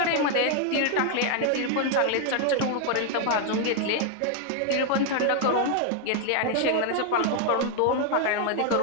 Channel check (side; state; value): both; different; correlation 0.00